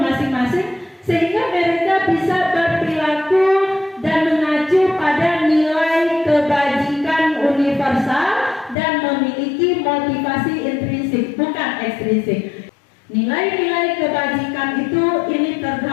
masing-masing, sehingga mereka bisa berperilaku dan mengacu pada nilai kebajikan universal dan memiliki motivasi intrinsik, bukan ekstrinsik. Nilai-nilai kebajikan itu ini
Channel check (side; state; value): right; drops out; at 8.8 s